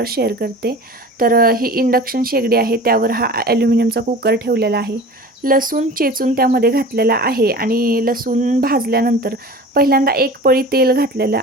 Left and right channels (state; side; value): normal; both; correlation 0.38